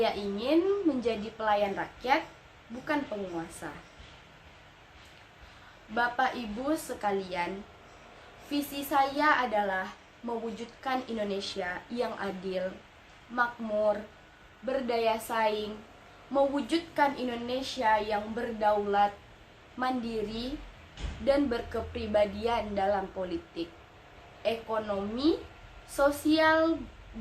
ingin menjadi pelayan rakyat, bukan penguasa. Bapak Ibu sekalian, visi saya adalah mewujudkan Indonesia yang adil, makmur, berdaya saing, mewujudkan Indonesia yang berdaulat, mandiri, dan berkepribadian dalam politik, ekonomi, sosial,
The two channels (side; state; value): both; identical; correlation 1.00